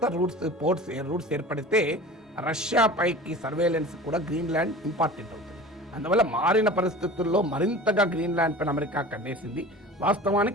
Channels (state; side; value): normal; both; correlation 0.38